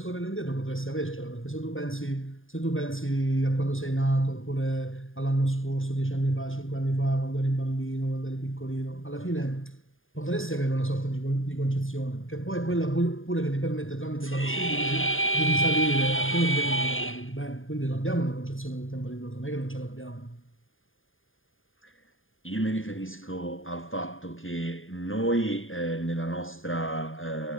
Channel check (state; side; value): late; right; 0.59 ms